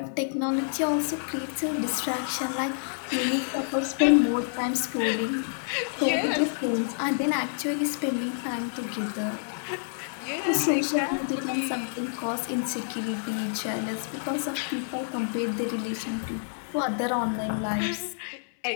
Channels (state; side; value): silent; right; 59 dB below the other